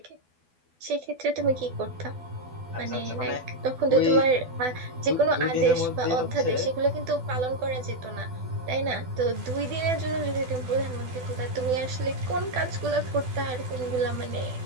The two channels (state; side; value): late; left; 12 ms